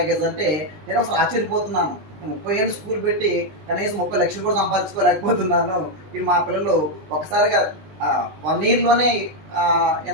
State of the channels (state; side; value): late; left; 20 ms